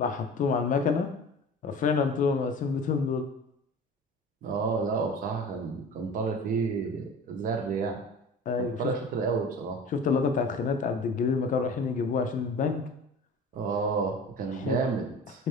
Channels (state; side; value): normal; both; correlation 0.39